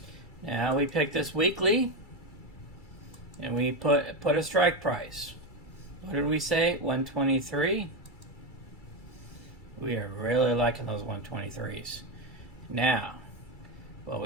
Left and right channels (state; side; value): late; right; 2.3 ms